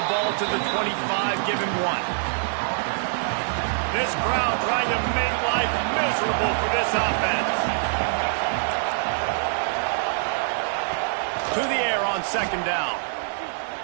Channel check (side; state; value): left; silent; digital silence